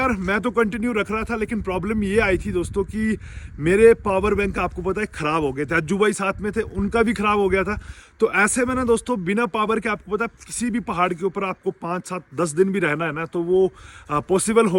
मैं तो कंटिन्यू रख रहा था, लेकिन प्रॉब्लम ये आई थी दोस्तों कि मेरे पावर बैंक आपको पता है ख़राब हो गए थे। अज्जू भाई साथ में थे, उनका भी ख़राब हो गया था। तो ऐसे में ना दोस्तों, बिना पावर के आपको पता है किसी भी पहाड़ के ऊपर आपको 5-7-10 दिन भी रहना है ना, तो वो पॉसिबल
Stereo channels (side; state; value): both; identical; correlation 1.00